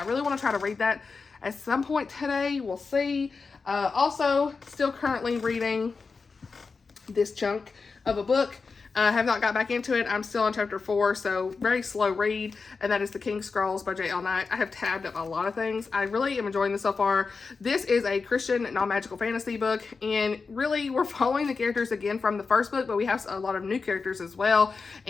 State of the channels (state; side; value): quieter; right; 4.6 dB